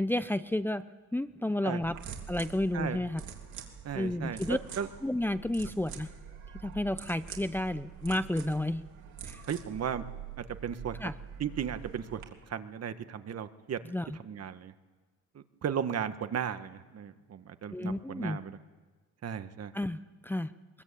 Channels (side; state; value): both; normal; correlation 0.65